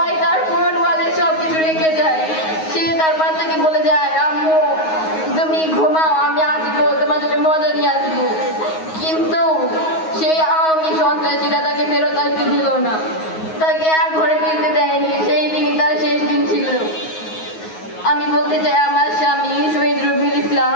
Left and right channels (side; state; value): right; late; 9.5 ms